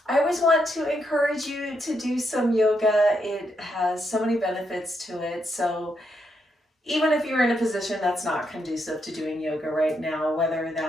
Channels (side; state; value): both; normal; correlation 0.79